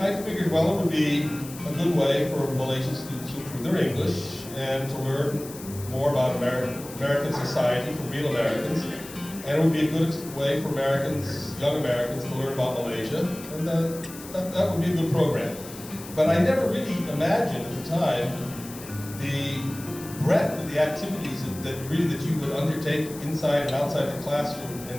figured, well, it would be a good way for Malaysian students to improve their English and to learn more about American society from real Americans. And it would be a good way for Americans, young Americans, to learn about Malaysia, and that would be a good program. But I never really imagined at the time the breadth of the activities that you would undertake inside and outside the classroom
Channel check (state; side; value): noise; left; hiss, 15 dB below the sound